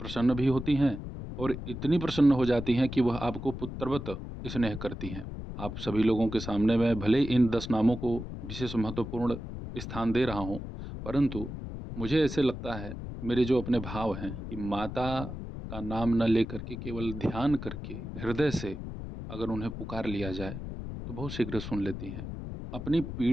भी होती हैं और इतनी प्रसन्न हो जाती हैं कि वह आपको पुत्रवत स्नेह करती हैं। आप सभी लोगों के सामने मैं भले इन 10 नामों को विशेष महत्वपूर्ण स्थान दे रहा हूँ, परंतु मुझे ऐसे लगता है, मेरे जो अपने भाव हैं, कि माता का नाम न लेकर के केवल ध्यान करके हृदय से अगर उन्हें पुकार लिया जाए तो बहुत शीघ्र सुन लेती हैं। अपनी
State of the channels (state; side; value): noise; left; rumble, 8 dB below the sound